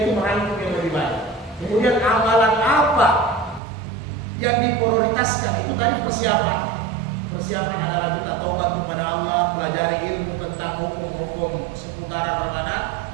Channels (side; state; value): left; drops out; at 3.6 s